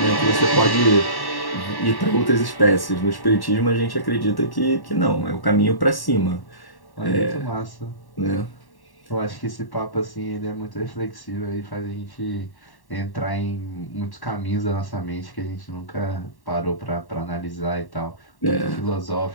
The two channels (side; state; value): right; late; 1.1 ms